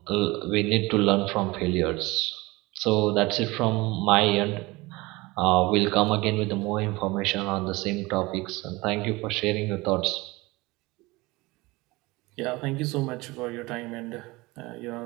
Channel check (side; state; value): left; quieter; 22.2 dB